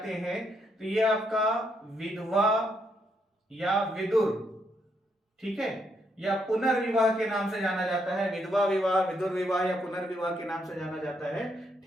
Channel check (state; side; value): normal; both; correlation 0.76